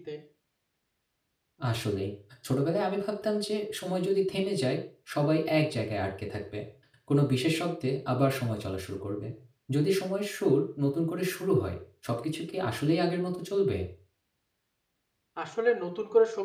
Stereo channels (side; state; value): both; identical; correlation 1.00